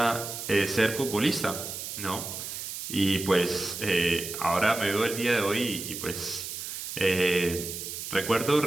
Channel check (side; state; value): right; noise; hiss, 7 dB below the sound